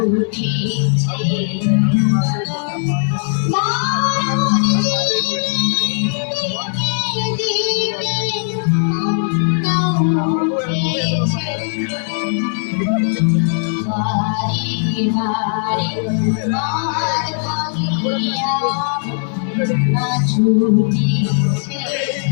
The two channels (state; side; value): silent; right; digital silence